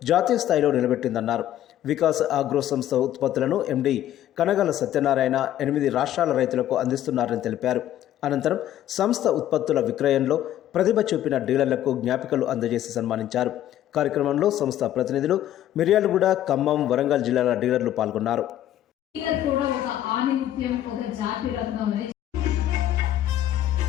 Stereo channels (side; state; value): right; quieter; 12.2 dB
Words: జాతీయ స్థాయిలో నిలబెట్టిందన్నారు. వికాస్ అగ్రో సంస్థ ఉత్పత్తులను ఎండి కనగల సత్యనారాయణ 8 రాష్ట్రాల రైతులకు అందిస్తున్నారని తెలిపారు. అనంతరం సంస్థ ఉత్పత్తుల విక్రయంలో ప్రతిభ చూపిన డీలర్లకు జ్ఞాపికలు అందజేసి సన్మానించారు. కార్యక్రమంలో సంస్థ ప్రతినిధులు, మిర్యాలగూడ, ఖమ్మం, వరంగల్ జిల్లాల డీలర్లు పాల్గొన్నారు.